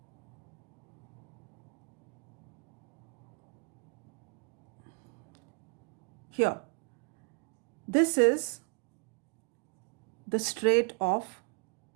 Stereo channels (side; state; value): left; quieter; 37.0 dB